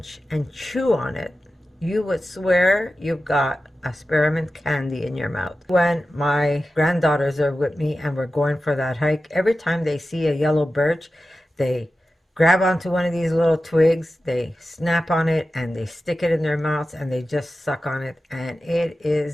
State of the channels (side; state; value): both; normal; correlation 0.93